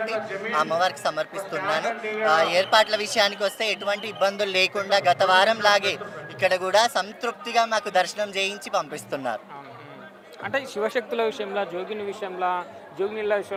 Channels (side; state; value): both; identical; correlation 1.00